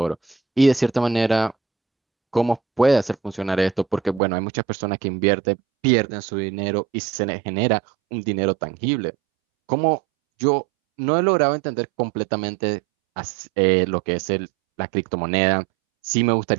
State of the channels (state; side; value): drops out; left; at 4.2 s